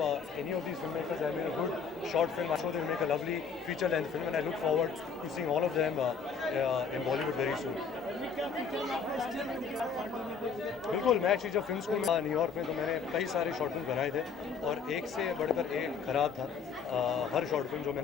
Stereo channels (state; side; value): quieter; right; 5.8 dB